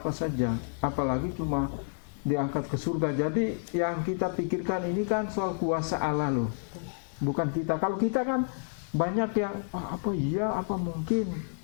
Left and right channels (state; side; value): silent; right; digital silence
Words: saja, apalagi cuma diangkat ke surga. Jadi yang kita pikirkan ini kan soal kuasa Allah loh, bukan kita. Kalau kita kan banyak yang apa iya, apa mungkin,